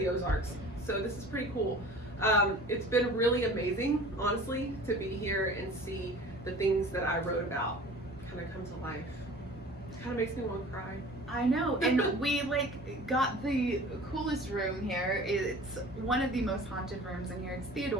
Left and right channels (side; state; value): both; normal; correlation 0.43